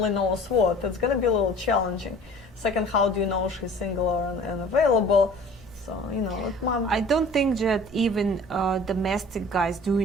knows what? It's going to be a little challenging. Second, how do you know she's single and available? So, I don't think that even domestic guys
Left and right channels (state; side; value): normal; both; correlation 0.46